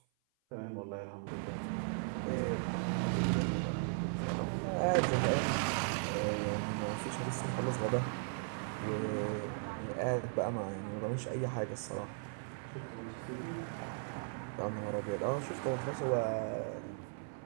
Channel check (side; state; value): left; silent; 53 dB below the other